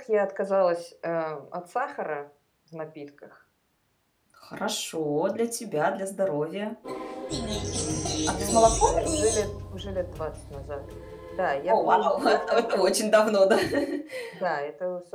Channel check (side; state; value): both; identical; correlation 1.00